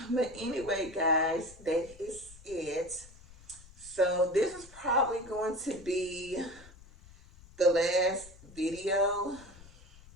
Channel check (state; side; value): noise; left; rumble, 21 dB below the sound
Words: But anyway, guys, that is it. So this is probably going to be the last video